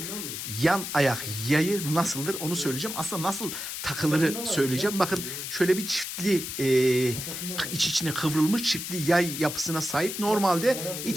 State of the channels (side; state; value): left; noise; hiss, 6 dB below the sound